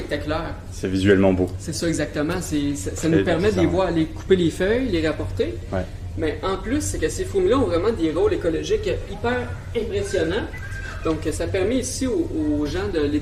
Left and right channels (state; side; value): identical; both; correlation 1.00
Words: C'est visuellement beau. C'est ça exactement. Ça nous permet de les voir, aller couper les feuilles, les rapporter. Ouais. Mais en plus, c'est que ces fourmis-là ont vraiment des rôles écologiques hyper impressionnants. Donc, ça permet ici aux gens de